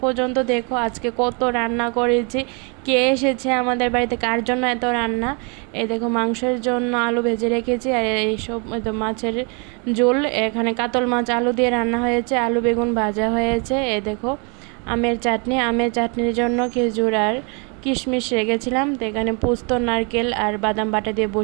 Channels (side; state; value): left; quieter; 34.8 dB